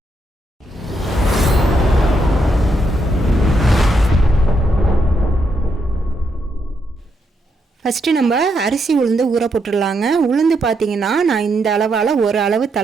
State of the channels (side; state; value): both; normal; correlation 0.79